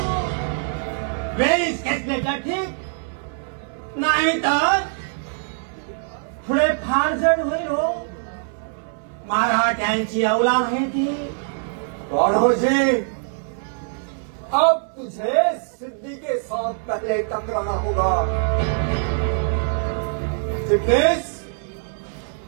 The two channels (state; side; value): silent; left; 63 dB below the other